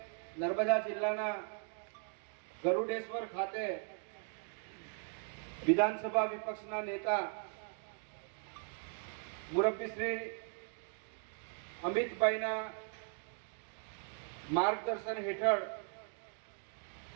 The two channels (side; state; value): left; silent; 52 dB below the other